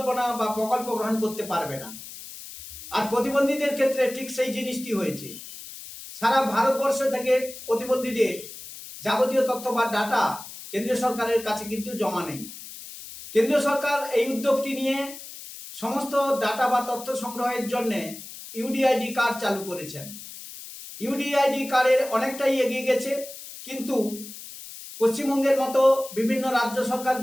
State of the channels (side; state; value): left; noise; hiss, 13 dB below the sound